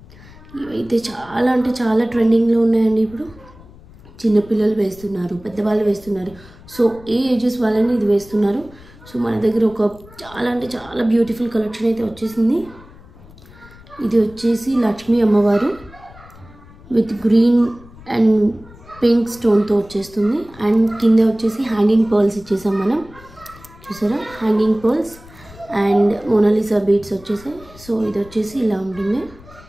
ఇవైతే చాలా అంటే చాలా ట్రెండింగ్లో ఉన్నాయండి. ఇప్పుడు చిన్నపిల్లలు వేస్తున్నారు, పెద్దవాళ్ళు వేస్తున్నారు. సో ఏ ఏజెస్ వాళ్ళని ఇది వేస్తున్నారు. సో మన దగ్గర ఒక చాలా అంటే చాలా బ్యూటిఫుల్ కలెక్షన్ అయితే వచ్చేసింది. ఇది వచ్చేసి లక్ష్మీ అమ్మవారు విత్ గ్రీన్ అండ్ పింక్ స్టోన్తో వచ్చేస్తుంది. అండ్ కింద వచ్చేసి హ్యాంగింగ్ పర్ల్స్ ఇచ్చేసాం మనం, చూసారా hanging pearls and Mona Lisa beads వచ్చేసాయి. సో ఇది వచ్చేసి ఇలా ఉంటుంది.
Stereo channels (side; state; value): left; noise; rumble, 22 dB below the sound